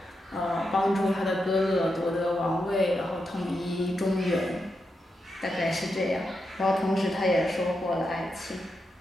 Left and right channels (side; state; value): both; normal; correlation 0.86